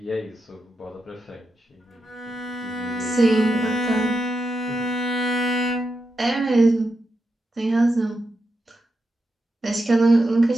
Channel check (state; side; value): normal; both; correlation 0.86